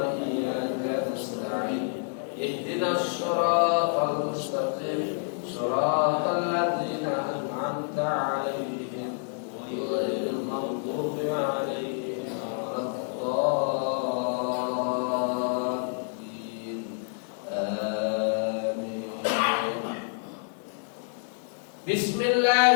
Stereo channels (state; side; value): silent; right; 59 dB below the other